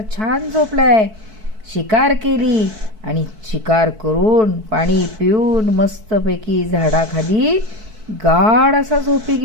छान झोपलाय. शिकार केली आणि शिकार करून पाणी पिऊन मस्तपैकी झाडाखाली गाढ असा झोपी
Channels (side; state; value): left; late; 4.6 ms